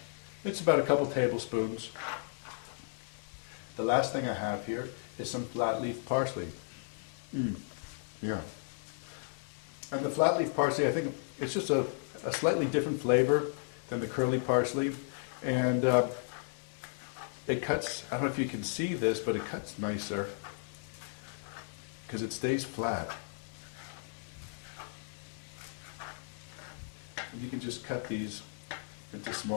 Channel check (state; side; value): silent; right; 55 dB below the other